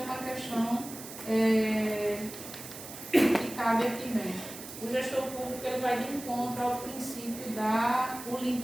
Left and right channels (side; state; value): right; noise; hiss, 12 dB below the sound